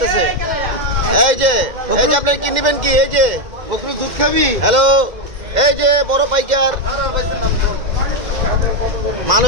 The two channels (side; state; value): left; late; 2.1 ms